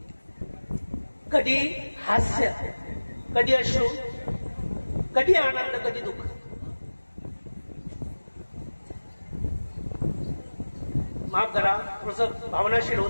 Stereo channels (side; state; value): both; inverted; correlation -1.00